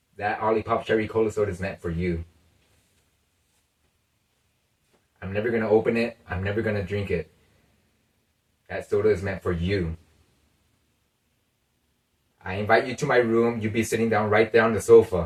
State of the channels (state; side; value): identical; both; correlation 1.00